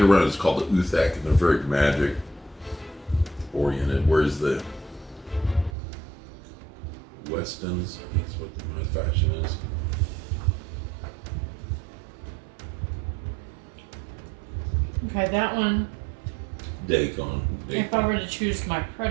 running is called the Uthek, and they're very magic oriented, whereas the Westons, I think is what my faction is. Okay, that one. Dagon. If I were to choose my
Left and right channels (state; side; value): drops out; left; at 5.7 s